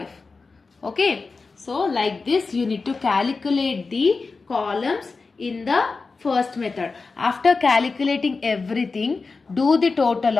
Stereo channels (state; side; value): quieter; right; 4.2 dB